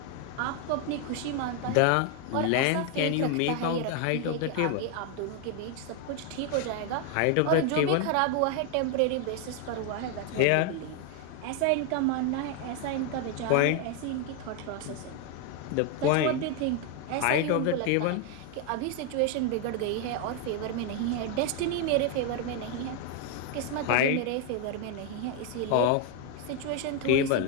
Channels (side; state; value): both; different; correlation 0.01